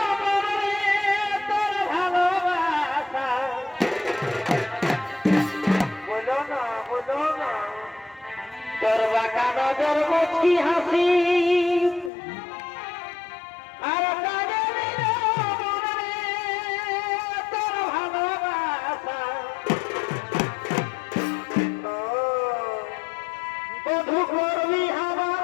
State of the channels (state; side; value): drops out; right; at 12.1 s